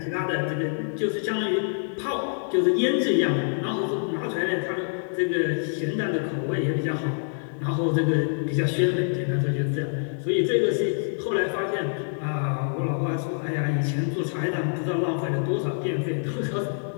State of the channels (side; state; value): right; silent; digital silence